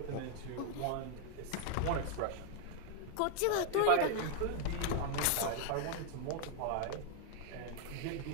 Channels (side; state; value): both; different; correlation 0.00